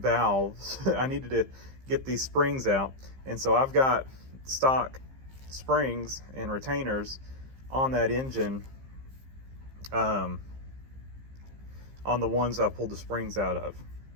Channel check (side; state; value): left; late; 15 ms